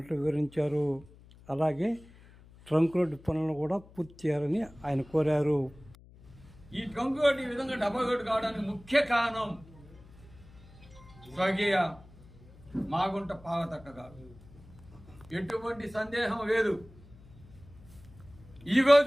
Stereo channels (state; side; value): noise; left; hum, 23 dB below the sound